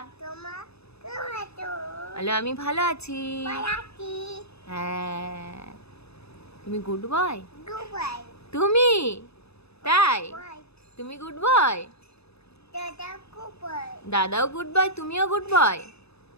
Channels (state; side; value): late; right; 0.79 ms